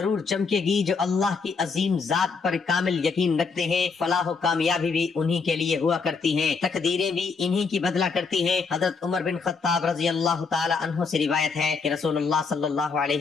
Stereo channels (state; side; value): quieter; right; 4.9 dB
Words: چمکے گی. جو اللہ کی عظیم ذات پر کامل یقین رکھتے ہیں، فلاح و کامیابی بھی انہی کے لیے ہوا کرتی ہیں، تقدیریں بھی انہی کی بدلا کرتی ہیں. حضرت عمر بن خطاب رضی اللہ تعالی عنہ سے روایت ہے کہ رسول اللہ صلی اللہ